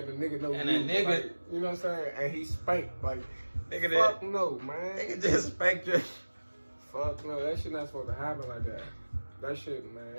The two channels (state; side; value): inverted; both; correlation -1.00